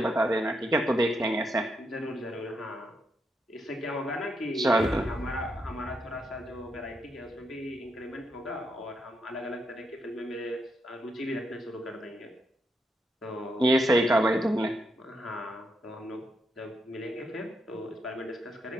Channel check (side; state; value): both; normal; correlation 0.81